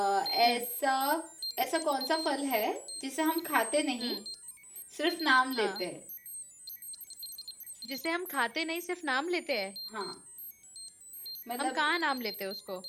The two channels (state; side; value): identical; both; correlation 1.00